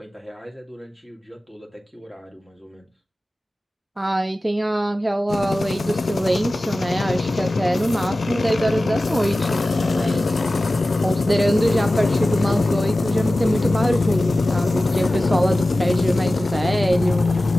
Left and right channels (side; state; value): both; normal; correlation 0.96